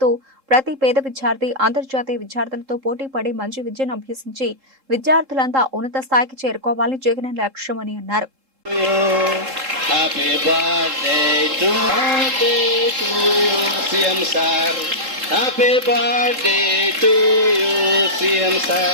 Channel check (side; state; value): left; late; 3.7 ms